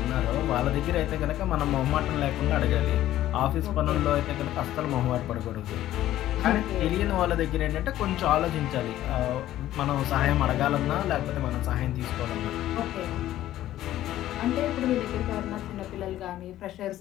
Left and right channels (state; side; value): quieter; right; 13.6 dB